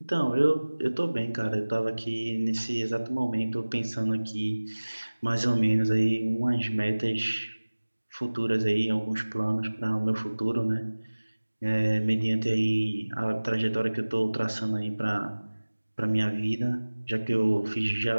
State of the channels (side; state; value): both; inverted; correlation -1.00